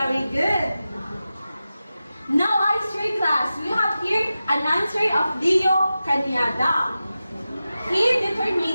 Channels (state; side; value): inverted; both; correlation -0.93